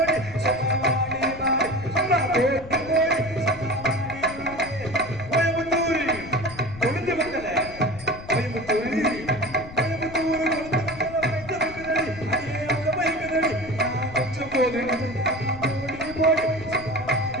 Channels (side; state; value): left; noise; rumble, 15 dB below the sound